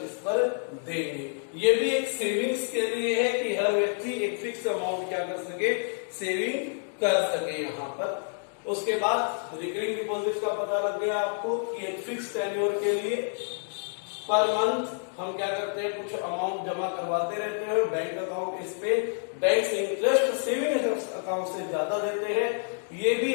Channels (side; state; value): right; silent; 59 dB below the other